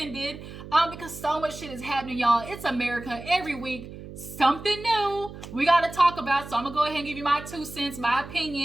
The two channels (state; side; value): noise; right; hum, 13 dB below the sound